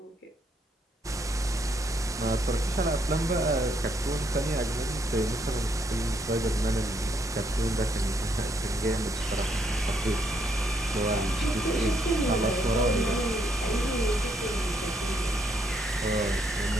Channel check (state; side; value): normal; both; correlation 0.72